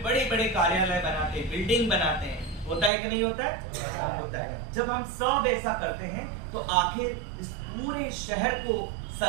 बड़े बड़े कार्यालय बनाते हैं, बिल्डिंग बनाते हैं। होता है कि नहीं होता है? होता है। जब हम सब ऐसा करते हैं तो आखिर इस पूरे शहर को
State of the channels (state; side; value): drops out; left; at 2.9 s